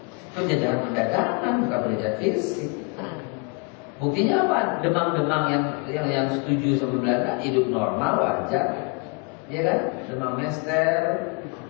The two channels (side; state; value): right; quieter; 32.0 dB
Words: Penjajahan perdagangan, bukan penjajahan fisik. Buktinya apa? Demang-demang yang setuju sama Belanda hidup normal, wajar. Ya kan? Demang Mester.